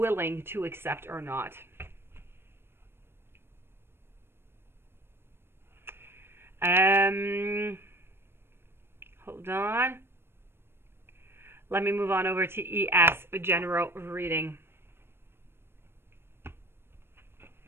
to accept or not. Hold on. Let me move on over to ES, a general reading.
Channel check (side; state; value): left; late; 0.11 ms